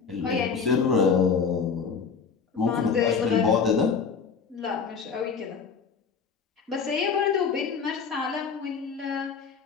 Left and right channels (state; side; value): quieter; right; 5.9 dB